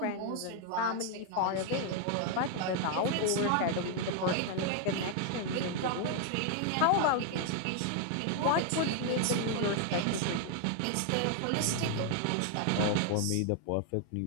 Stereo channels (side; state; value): both; different; correlation 0.00